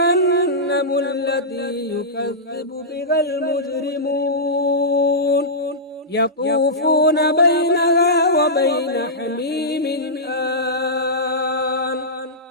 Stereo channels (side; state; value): both; normal; correlation -0.14